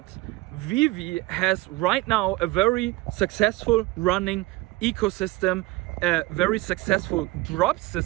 Veve has right now a very successful running ecosystem, a very successful drop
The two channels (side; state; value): left; quieter; 20.2 dB